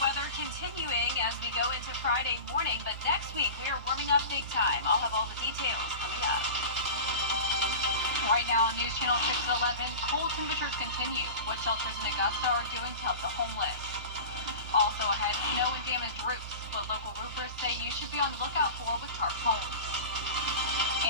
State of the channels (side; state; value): both; inverted; correlation -0.32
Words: weather continuing as we go into Friday morning, but next week we are warming up big time. I'll have all the details coming up. Right now on News Channel 611, cold temperatures continue. What shelters in Augusta are doing to help the homeless. Also ahead, snow and damaged roofs, what local roofers say you should be on the lookout for with tarp homes.